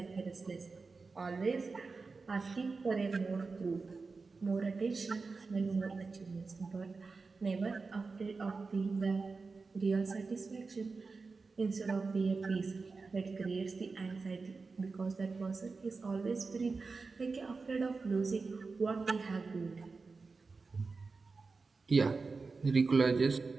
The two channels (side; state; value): left; quieter; 4.2 dB